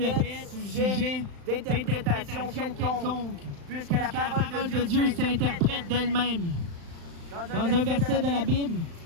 être sujet d'interprétation quelconque, puisque la parole de Dieu s'interprète d'elle-même. Dans un verset de la Bible,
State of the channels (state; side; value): late; left; 35 ms